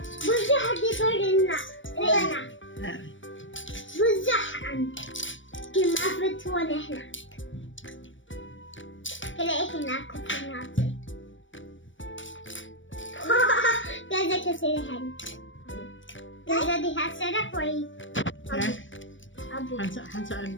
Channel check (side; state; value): right; late; 0.56 ms